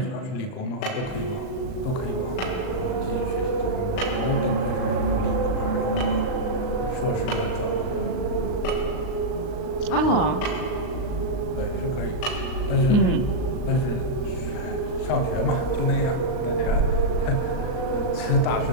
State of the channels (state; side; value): late; right; 39 ms